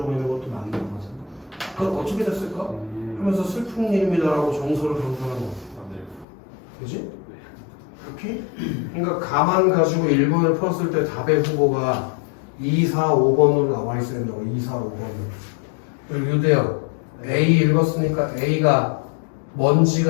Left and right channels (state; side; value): drops out; right; at 6.2 s